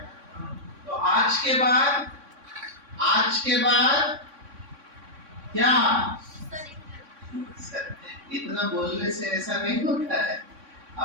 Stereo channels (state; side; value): late; left; 3.6 ms